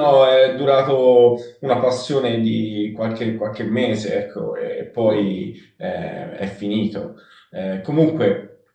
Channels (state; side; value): identical; both; correlation 1.00